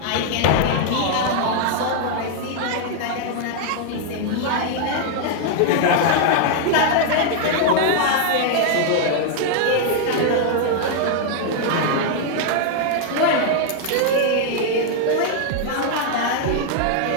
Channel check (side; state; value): both; different; correlation 0.00